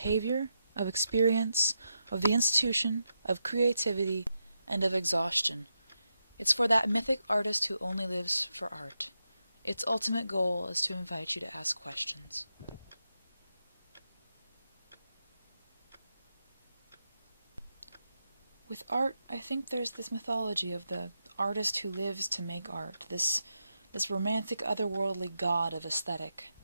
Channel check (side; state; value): both; inverted; correlation -0.86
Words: of experience, of the institution, of creativity, and of exhaustion. It's for that mythic artist who only lives for art. Its ultimate goal is to invite you to ask questions. With art, I think there's this mythology of the artist who lives to make art, this romantic, otherworldly god of aesthetic.